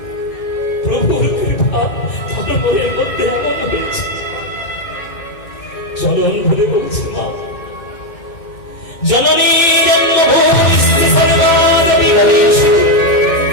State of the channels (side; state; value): right; late; 2.1 ms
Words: প্রভুর কৃপা তার মনের মধ্যে আনন্দ হয়েছে। চরণ ধরে বলছে, মা জননী জন্মভূমিস্থ সর্বাদপি ভবেষু